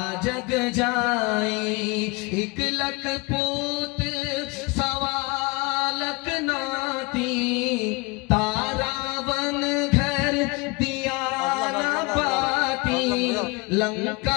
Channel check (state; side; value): quieter; right; 27.1 dB